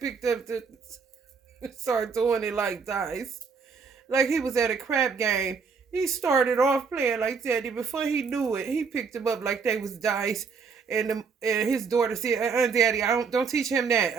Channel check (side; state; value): left; quieter; 5.5 dB